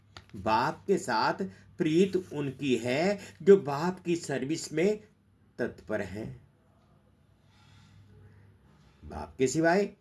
बाप के साथ प्रीत उनकी है जो बाप की सर्विस में तत्पर हैं। बाप के सिवाय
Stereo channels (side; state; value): both; identical; correlation 1.00